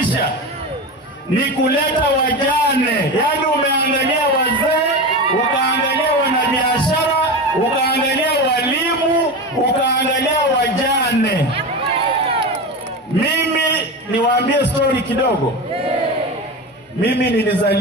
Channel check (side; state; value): both; normal; correlation 0.24